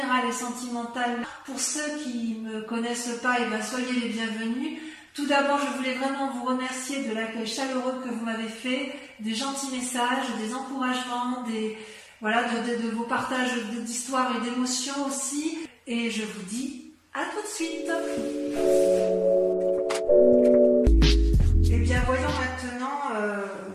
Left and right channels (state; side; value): identical; both; correlation 1.00